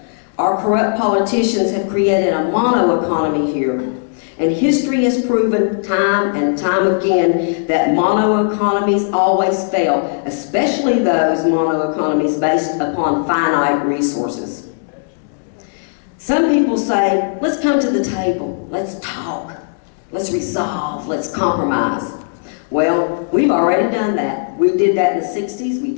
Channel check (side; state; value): right; silent; digital silence